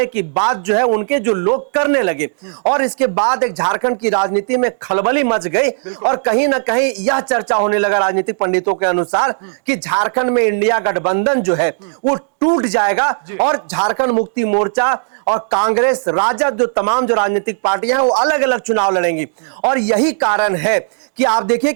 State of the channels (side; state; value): left; silent; digital silence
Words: की बात जो है उनके जो लोग करने लगे। और इसके बाद एक झारखंड की राजनीति में खलबली मच गई और कहीं ना कहीं यह चर्चा होने लगा राजनीतिक पंडितों के अनुसार कि झारखंड में इंडिया गठबंधन जो है वो टूट जाएगा और झारखंड मुक्ति मोर्चा और कांग्रेस, राजद, जो तमाम जो राजनीतिक पार्टियां हैं वो अलग अलग चुनाव लड़ेंगी। और यही कारण है कि आप देखिए